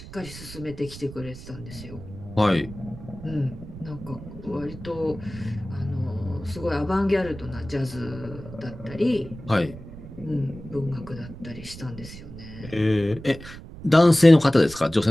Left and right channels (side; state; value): right; noise; rumble, 14 dB below the sound